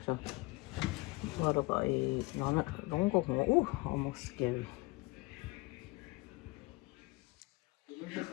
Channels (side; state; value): right; quieter; 23.9 dB